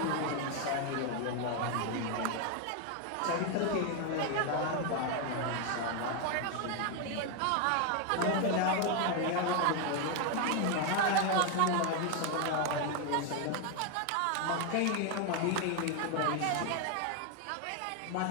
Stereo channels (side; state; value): both; different; correlation 0.01